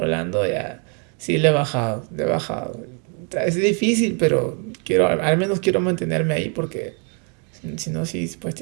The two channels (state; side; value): quieter; left; 38.7 dB